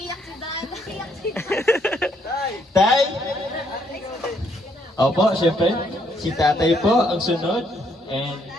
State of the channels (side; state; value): both; normal; correlation 0.71